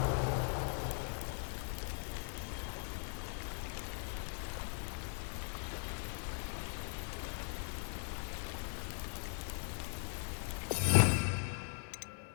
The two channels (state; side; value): silent; right; 51 dB below the other